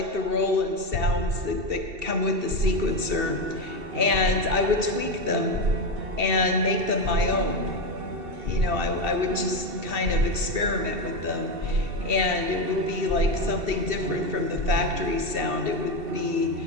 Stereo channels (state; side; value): late; left; 2.7 ms